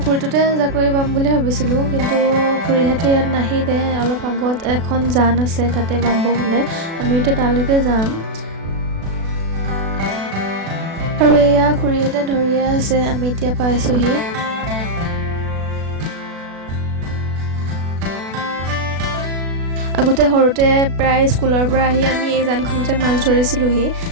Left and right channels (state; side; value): late; left; 36 ms